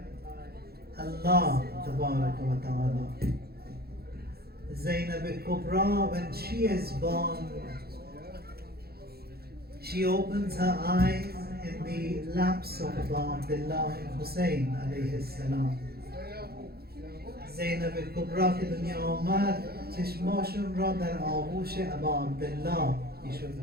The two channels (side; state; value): left; late; 0.46 ms